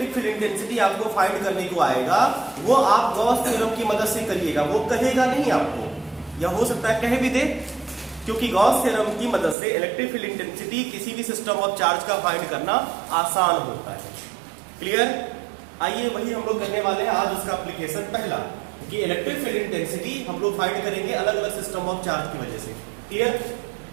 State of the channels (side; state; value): left; drops out; at 9.6 s